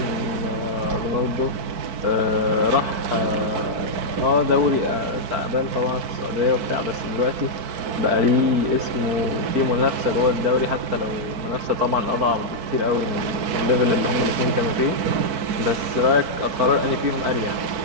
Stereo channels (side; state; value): left; late; 4.5 ms